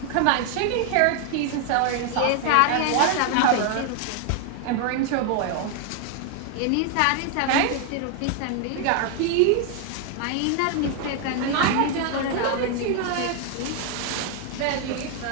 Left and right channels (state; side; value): different; both; correlation 0.00